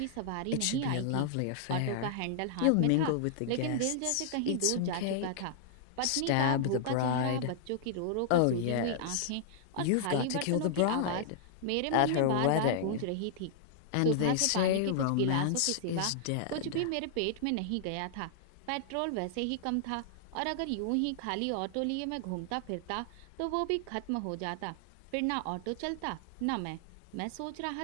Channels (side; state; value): both; different; correlation -0.01